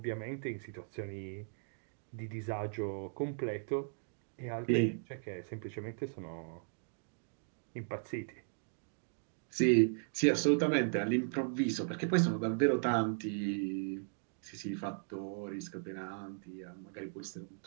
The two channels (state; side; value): silent; left; digital silence